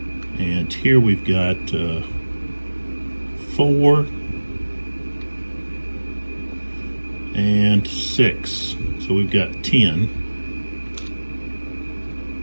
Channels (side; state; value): both; inverted; correlation -1.00